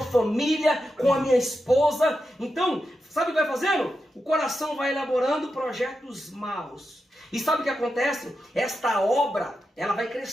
com a minha esposa. Então, sabe o que vai fazendo? O coração vai elaborando projetos maus. E sabe o que acontece? Esta obra, ela vai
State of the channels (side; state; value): both; normal; correlation 0.88